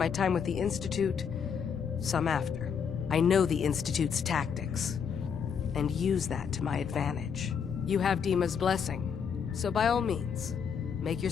time with the Institute, some after. I know the Institute's tactics, and use that to my advantage. You have Dima's blessing, so by all means, make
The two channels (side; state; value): right; quieter; 6.9 dB